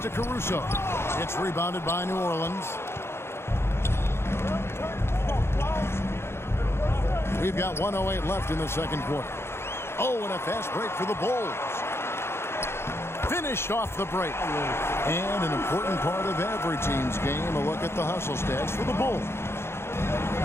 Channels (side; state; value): right; late; 0.12 ms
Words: Caruso. It's rebounded by New Orleans. We've got 1:08 left in the second quarter. Oh, and a fast break for the Bulls. Finished off the break. And an important part of every team's game, a look at the hustle stats for the Bulls.